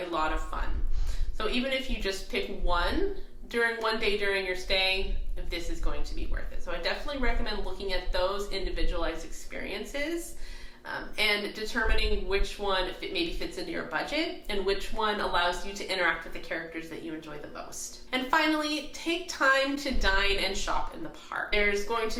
lot of fun. So even if you just pick one day during your stay, this is going to be worth it. So I definitely recommend looking at those individualized experiences and determining which one maybe fits into your budget and which one allows you to interact with the characters that you enjoy the most. And finally, take time to dine and shop in the park. There's going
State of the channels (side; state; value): both; identical; correlation 1.00